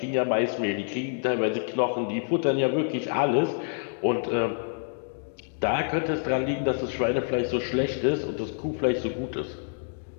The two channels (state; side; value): silent; right; digital silence